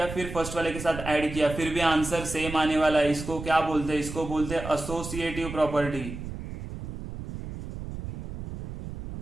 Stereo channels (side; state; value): right; noise; rumble, 8 dB below the sound